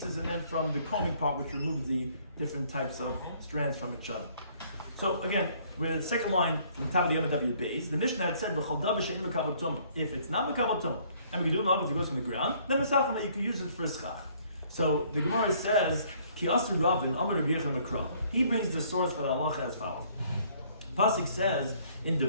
and then from the combing part, which removes the different types of strands from each other. So again, we're at the second line from the top of the Yom base. The Mishnah had said, if it's not mekabel tumah, and we do know if it goes from the ground, then mesachim that you could use it for schach. So the Gemara says, Ki asu Ravin, Amar Rabbi Yechon Makra. He brings the source for the halacha as follows. Pasuk says in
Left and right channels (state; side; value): inverted; both; correlation -0.61